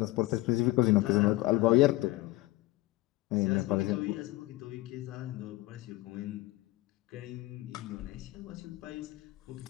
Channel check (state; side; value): quieter; right; 19.1 dB